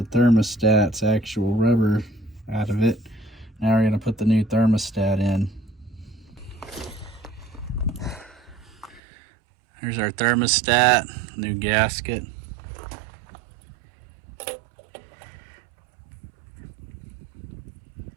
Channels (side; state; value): left; drops out; at 9.0 s